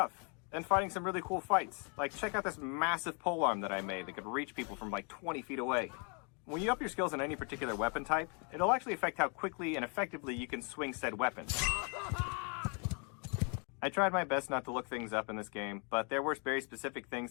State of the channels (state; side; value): quieter; right; 36.6 dB